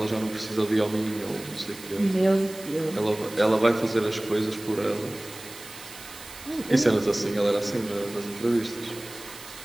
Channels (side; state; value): right; noise; hiss, 16 dB below the sound